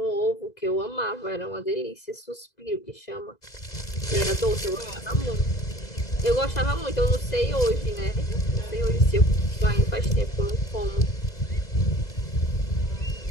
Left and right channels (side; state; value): right; late; 2.0 ms